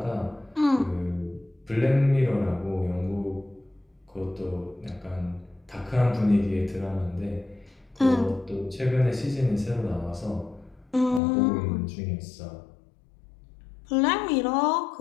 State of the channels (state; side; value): drops out; right; at 11.2 s